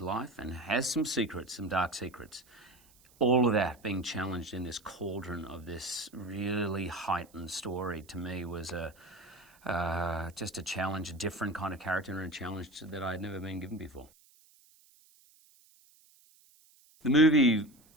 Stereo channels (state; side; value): noise; right; hiss, 29 dB below the sound